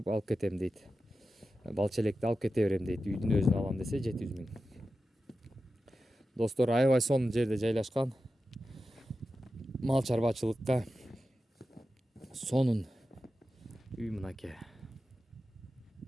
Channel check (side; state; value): both; normal; correlation 0.92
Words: алып кетем дейт. Балчелекти алып кете берем дейт. Үйдүн өзүн алам десе 700 миң. Достор, аябай сонун жерде жайлашкан. Мал чарбачылыкка сонун үй мынакей.